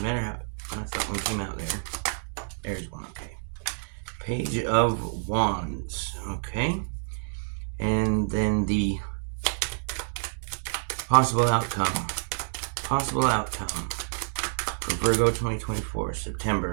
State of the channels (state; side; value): silent; left; digital silence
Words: matter how that one came out there. There's one, okay. Page of Wands, okay. And then the possible outcome for Virgo 2024,